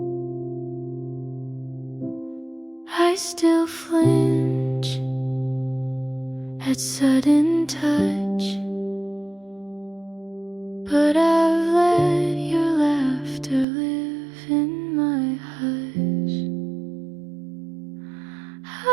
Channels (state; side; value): drops out; left; at 13.7 s